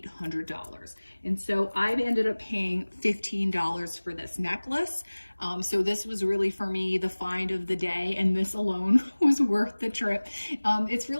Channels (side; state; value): both; inverted; correlation -1.00